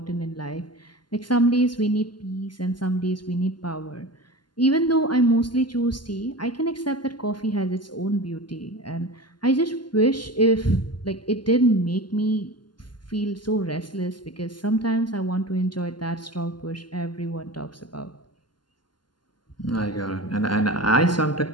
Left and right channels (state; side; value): late; right; 0.71 ms